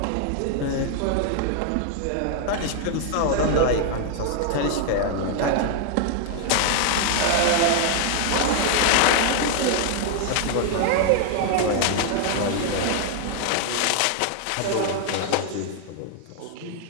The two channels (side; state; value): both; different; correlation 0.00